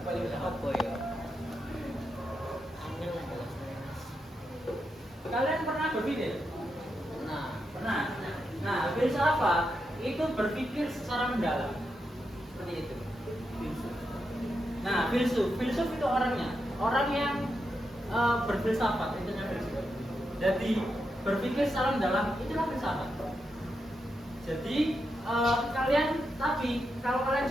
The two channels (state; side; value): normal; both; correlation 0.85